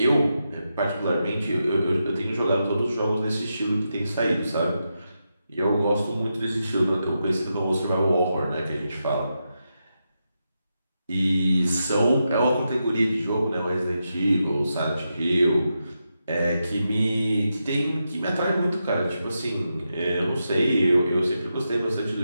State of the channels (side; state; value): both; inverted; correlation -0.87